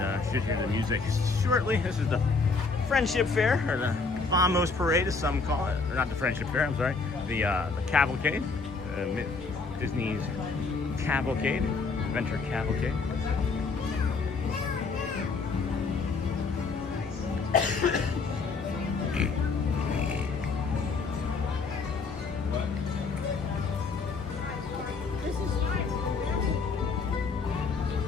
should hear the music shortly. This is the Friendship Fair, or the Vamos Parade as some call it, or not the Friendship Fair, I'm sorry, the Cavalcade, Disney's Cavalcade, Adventure Cavalcade.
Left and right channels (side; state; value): right; quieter; 4.4 dB